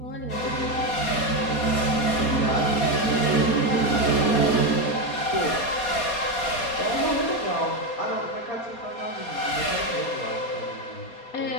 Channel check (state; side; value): late; right; 4.2 ms